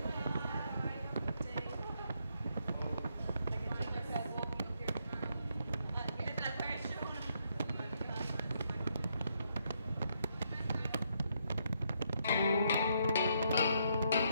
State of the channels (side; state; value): both; inverted; correlation -0.76